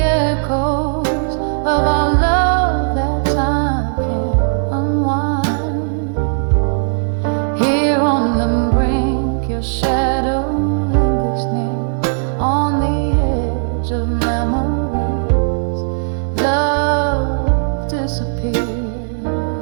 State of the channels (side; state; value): left; silent; digital silence